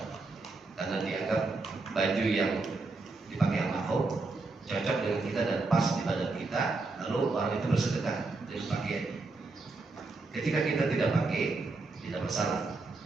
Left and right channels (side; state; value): left; quieter; 3.6 dB